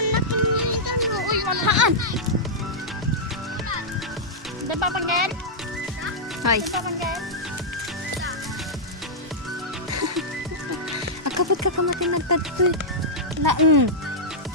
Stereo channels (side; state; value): both; normal; correlation -0.10